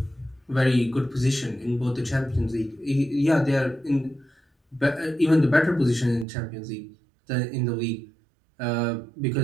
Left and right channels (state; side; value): drops out; left; at 6.2 s